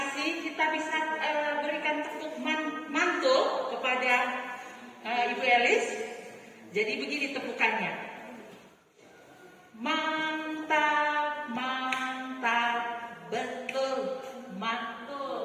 Kita bisa berikan tepuk mantul kepada Ibu Elis. Jadi begini tepukannya. Mantap, mantap, betul,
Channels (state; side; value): identical; both; correlation 1.00